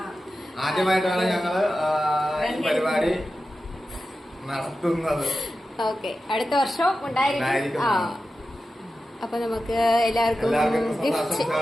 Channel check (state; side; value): normal; both; correlation 0.93